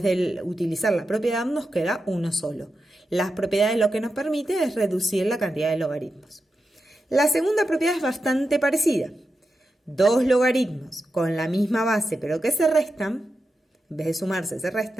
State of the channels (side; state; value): both; normal; correlation 0.89